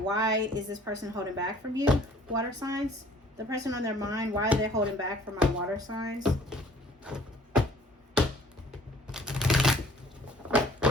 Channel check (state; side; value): normal; both; correlation 0.54